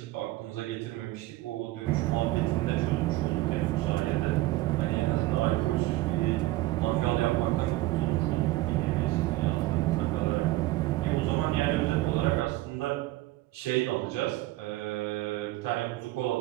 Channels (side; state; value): left; quieter; 17.8 dB